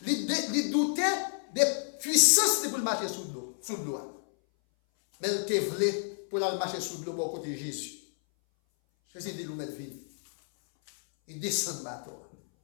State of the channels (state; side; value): silent; right; 58 dB below the other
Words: Il doutait des puissances pour marcher sous l'eau. Mais il te voulait pour marcher sous l'eau pour côté de Jésus. Jésus dit, nous mettre vie. Il descend de bateau.